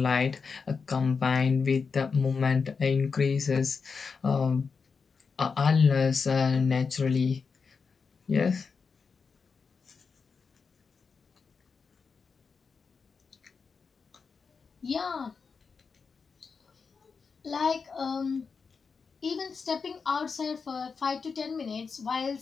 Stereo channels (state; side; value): quieter; right; 5.3 dB